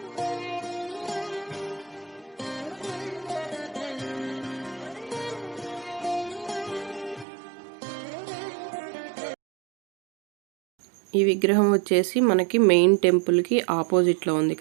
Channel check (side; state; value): left; drops out; at 7.2 s